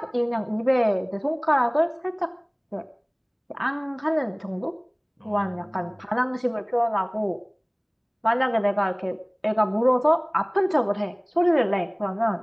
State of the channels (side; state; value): both; identical; correlation 1.00